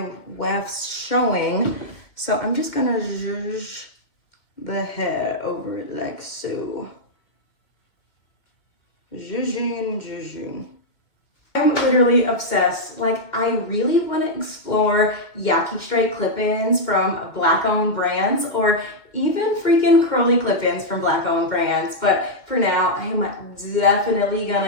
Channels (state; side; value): late; right; 2.2 ms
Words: wefts showing, so I'm just gonna zhuzh the hair over it like so. Zhuzhing. I'm literally obsessed. Like, I really want to explore Yaki Straight clip-ins from Black-owned brands, or even freaking curly clip-ins from Black-owned brands. But for now, I am definitely